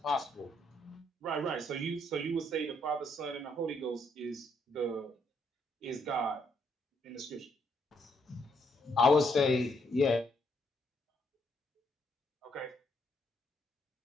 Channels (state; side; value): normal; both; correlation 0.73